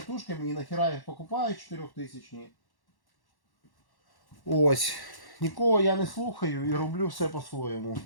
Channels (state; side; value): late; right; 1.1 ms